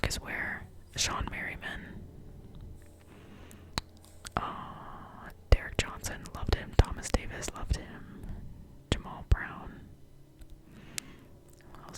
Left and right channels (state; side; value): identical; both; correlation 1.00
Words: Ware, Sean Merriman. Derek Johnson, loved him. Thomas Davis, loved him. Jamal Brown. What